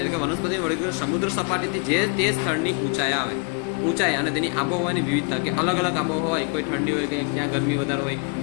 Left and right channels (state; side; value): quieter; right; 34.6 dB